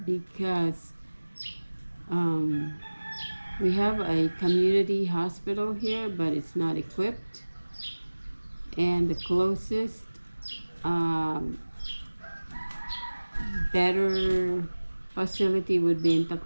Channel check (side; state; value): both; inverted; correlation -1.00